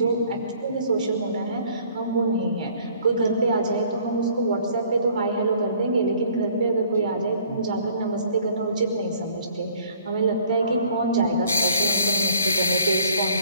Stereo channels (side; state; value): both; inverted; correlation -0.57